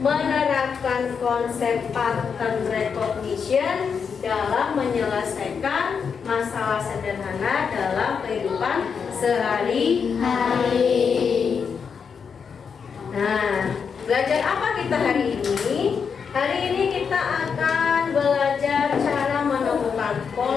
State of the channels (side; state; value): right; quieter; 6.3 dB